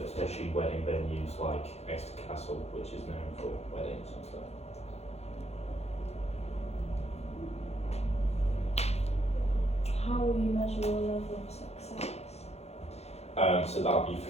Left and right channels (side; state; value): right; late; 0.31 ms